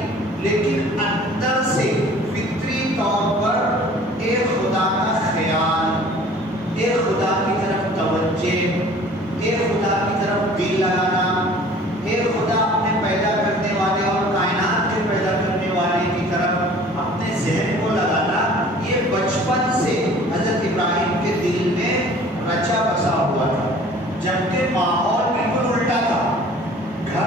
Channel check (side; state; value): both; normal; correlation 0.49